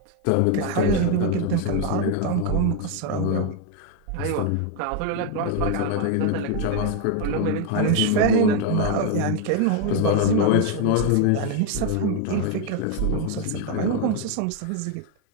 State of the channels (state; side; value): different; both; correlation 0.01